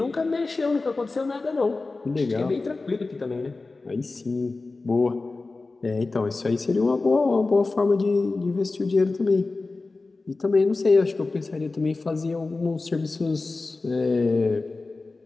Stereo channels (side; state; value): right; quieter; 3.6 dB